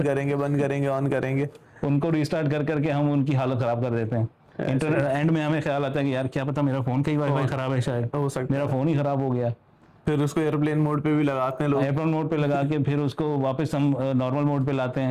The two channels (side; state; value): both; identical; correlation 1.00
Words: करेंगे, बंद करेंगे, ऑन करेंगे, उनको रिस्टार्ट कर करके हम उनकी हालत खराब कर देते हैं। इंटरनेट एंड में हमें ख्याल आता है कि यार क्या पता मेरा फोन का ही वाईफाई खराब है, शायद हो सकता मेरा फोन ही खराब हो गया। फिर उसको एयरप्लेन मोड पे भी लगाते हैं लोग, एयरप्लेन मोड पे लगा के फिर उसको वापस हम नॉर्मल मोड पे लाते